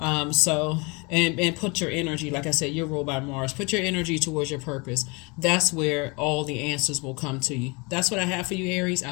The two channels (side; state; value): right; quieter; 28.5 dB